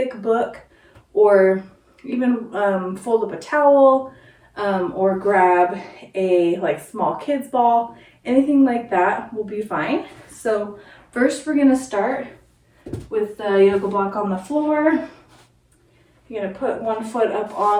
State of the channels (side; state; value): both; identical; correlation 1.00